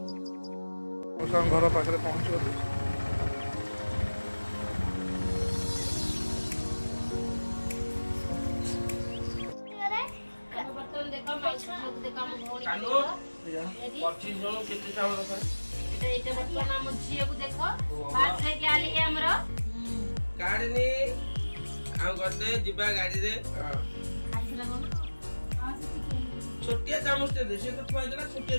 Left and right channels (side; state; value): both; inverted; correlation -1.00